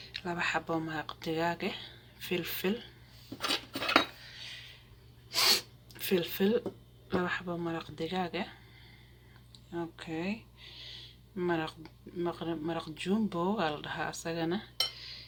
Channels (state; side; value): identical; both; correlation 1.00